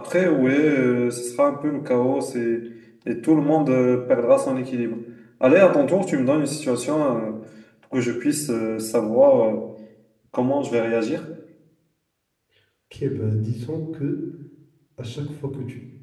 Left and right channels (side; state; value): both; identical; correlation 1.00